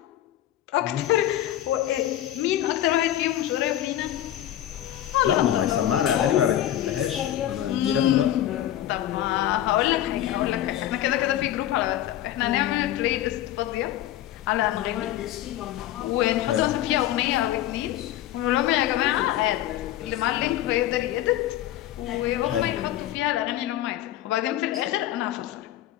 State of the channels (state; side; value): quieter; right; 12.8 dB